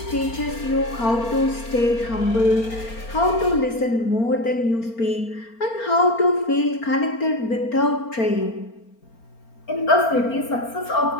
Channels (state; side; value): late; right; 4.4 ms